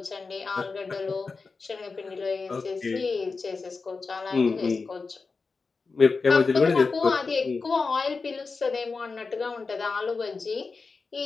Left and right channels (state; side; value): quieter; right; 4.4 dB